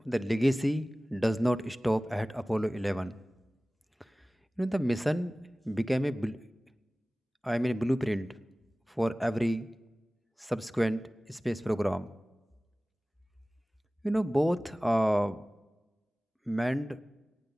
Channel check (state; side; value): normal; both; correlation 0.98